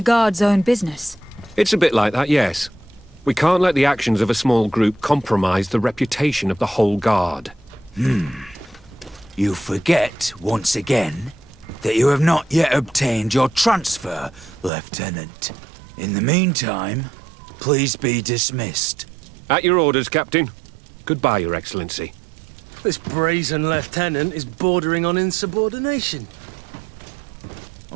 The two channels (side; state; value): left; drops out; at 14.7 s